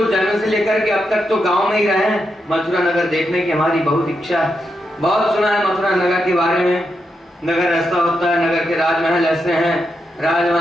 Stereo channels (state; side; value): normal; both; correlation 0.84